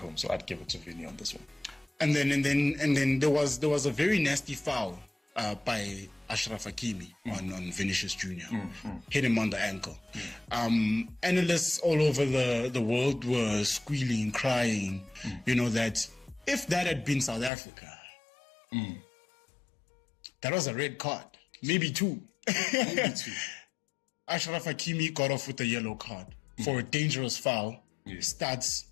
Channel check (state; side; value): drops out; right; at 17.5 s